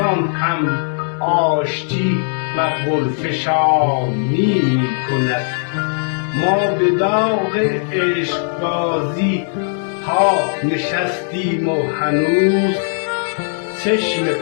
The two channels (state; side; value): silent; right; digital silence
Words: هم آشتی و گلفشانی می کند. ما به داغ عشقبازی ها نشستیم و هنوز چشم